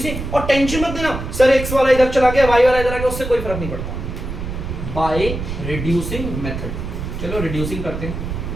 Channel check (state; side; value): noise; right; rumble, 6 dB below the sound